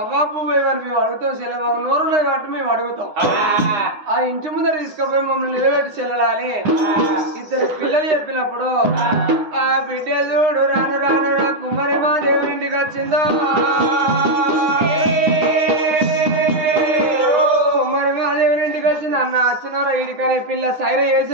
అవ్వాపు మేము అడుగుతాం చెల్లె మాకు నోరున్నాయి కాబట్టి మేము అడుగుతాం ఆ ఇంటి ముందర తీసుకుపోయి మమ్మల్ని నిలబెట్టి చెల్లెలని 2 పిల్లలు చెప్పినప్పుడు ఆ బిడ్డ చూడు రాను రాను కుమ్మరి మా దేవుని ఇంటికి వచ్చిందో కుమ్మరి మా దేవుని ఇంటికి వచ్చింది అన్న వచ్చినారా ఇడికనే పిల్ల సైర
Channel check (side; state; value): left; late; 9.7 ms